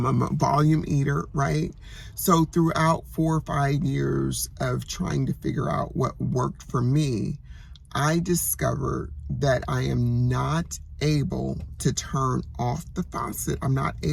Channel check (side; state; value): both; identical; correlation 1.00